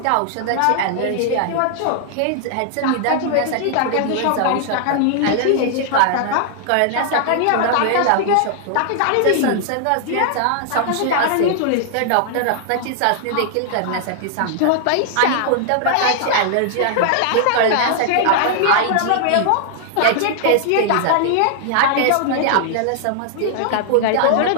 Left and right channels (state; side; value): different; both; correlation -0.01